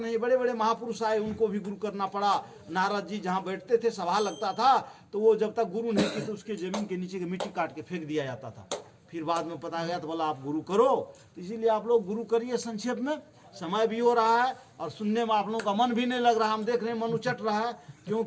बड़े बड़े महापुरुष आए, उनको भी गुरु करना पड़ा। नारद जी जहाँ बैठते थे, सभा लगता था, तो वो जब तक गुरु नहीं की तो उसके जमीन के नीचे की मिट्टी काट के फेंक दिया जाता था। फिर बाद में पता गया तो बोला आप गुरु करो। इसीलिए आप लोग गुरु करिए। संक्षेप में समय भी हो रहा है और सुनने में आप लोगों का मन भी नहीं लग रहा। हम देख रहे हैं मन उचट रहा है,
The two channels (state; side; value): identical; both; correlation 1.00